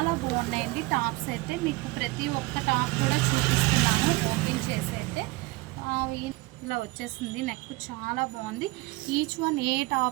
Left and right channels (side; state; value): left; quieter; 22.6 dB